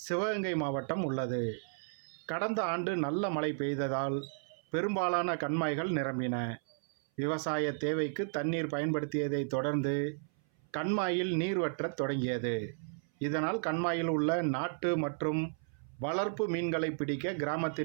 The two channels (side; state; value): left; silent; 55 dB below the other